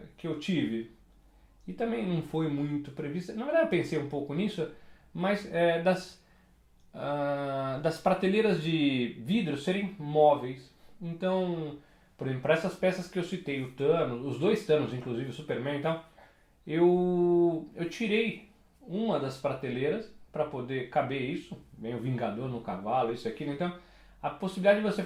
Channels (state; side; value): identical; both; correlation 1.00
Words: tive, e também não foi muito previsto, na verdade eu pensei um pouco nisso, mas das prateleiras de vidro serem móveis. Então, por exemplo, para essas peças que eu citei, o Thanos, os 2 Thanos, inclusive o Superman e tal, eu tirei uma das prateleiras para poder caber isso, vem o Vingador no cavalo, isso aqui, então a possibilidade de você